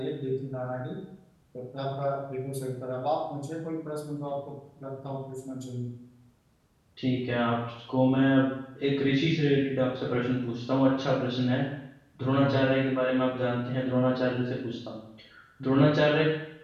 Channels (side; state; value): both; identical; correlation 1.00